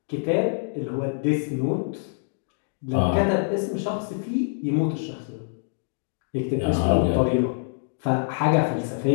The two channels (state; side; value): silent; right; digital silence